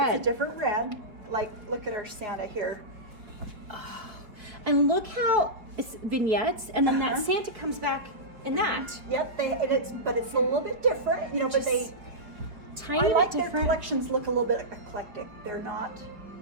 It's a different red. Like, look at our Santa here. And look how it's vignettes, and then that Santa comes back in that. Yep, but it's a little bit different, you know, but Just tiny I bit like their different. collections look a little bit eclectic. They're not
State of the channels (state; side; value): late; left; 4.9 ms